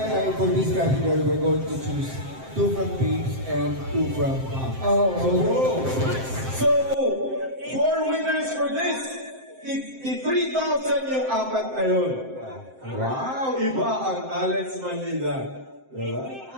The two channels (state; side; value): late; left; 7.7 ms